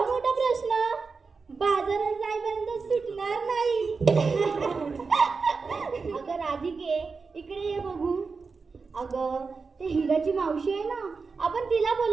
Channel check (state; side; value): quieter; left; 4.7 dB